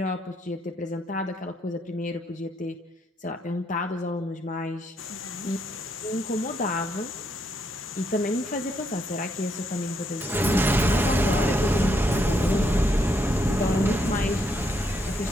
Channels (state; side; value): normal; both; correlation 0.75